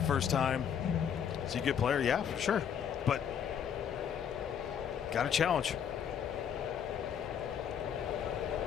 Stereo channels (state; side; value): quieter; right; 8.3 dB